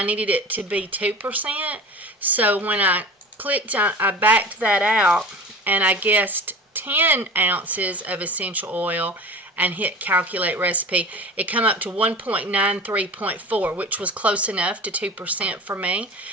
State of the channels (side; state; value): both; normal; correlation 0.36